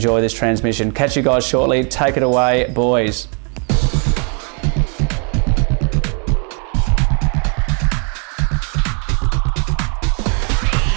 this transmission. Catch you guys shortly. Take it away, boys.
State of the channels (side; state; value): left; quieter; 38.0 dB